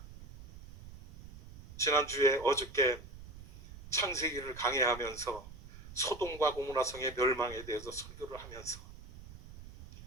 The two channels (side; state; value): right; noise; rumble, 16 dB below the sound